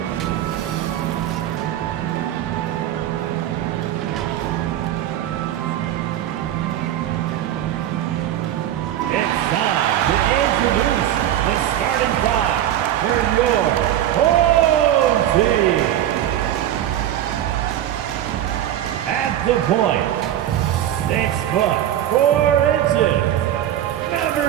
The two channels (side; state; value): left; quieter; 11.9 dB